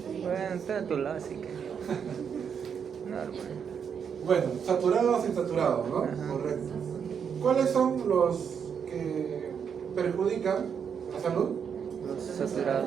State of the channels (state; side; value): quieter; left; 7.2 dB